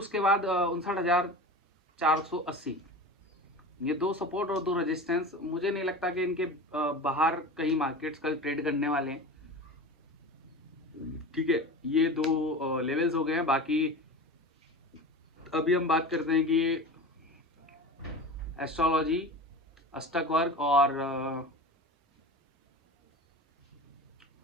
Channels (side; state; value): both; normal; correlation 0.32